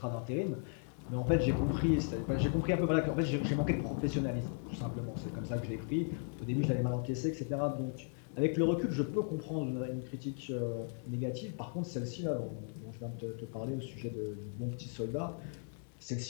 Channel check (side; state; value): right; silent; 53 dB below the other